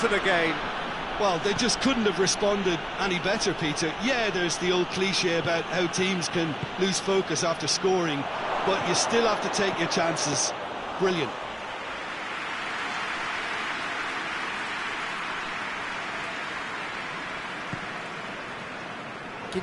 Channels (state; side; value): identical; both; correlation 1.00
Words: the game. Well, they just couldn't have responded any better, Peter. Yeah, there's the old cliche about how teams can lose focus after scoring, but you still have to take your chances. Brilliant.